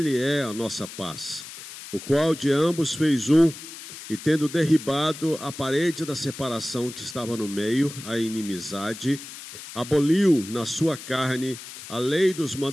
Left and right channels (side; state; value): left; noise; hiss, 13 dB below the sound